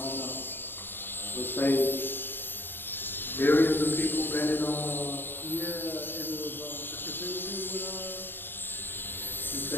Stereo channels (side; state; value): right; late; 0.098 ms